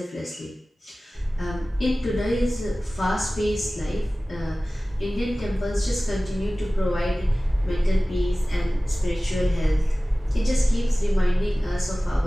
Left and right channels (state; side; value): normal; both; correlation 0.97